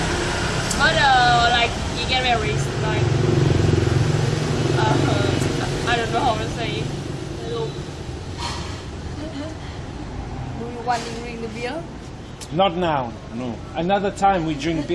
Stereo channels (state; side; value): identical; both; correlation 1.00